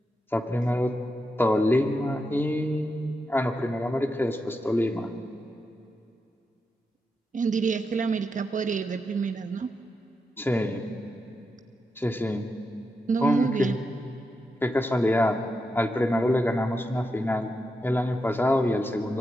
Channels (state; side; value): normal; both; correlation 0.86